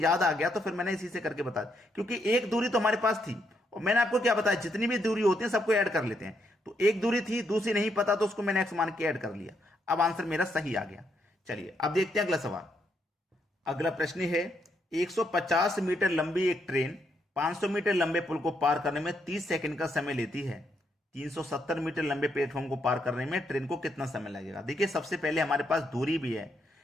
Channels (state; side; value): normal; both; correlation 0.77